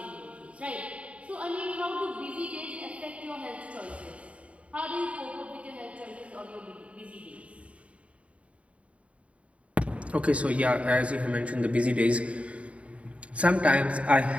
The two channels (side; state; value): left; late; 0.064 ms